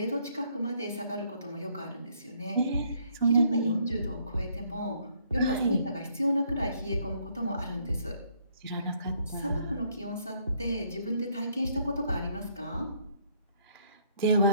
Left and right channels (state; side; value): inverted; both; correlation -0.68